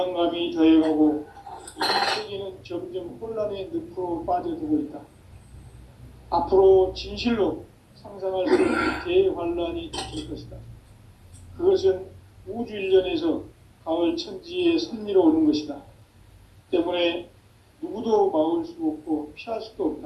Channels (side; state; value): both; identical; correlation 1.00